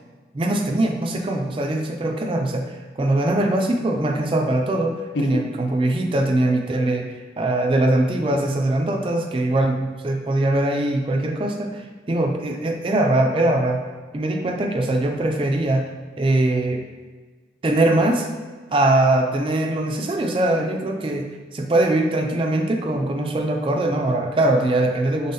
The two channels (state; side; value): normal; both; correlation 0.69